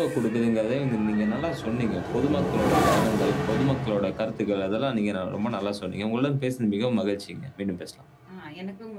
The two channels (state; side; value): identical; both; correlation 1.00